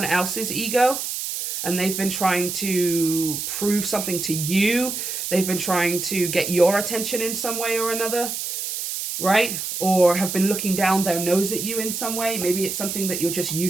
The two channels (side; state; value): right; noise; hiss, 4 dB below the sound